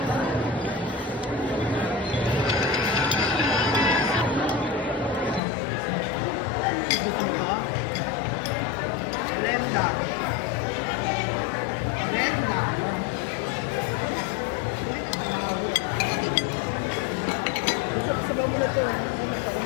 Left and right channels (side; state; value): right; drops out; at 5.4 s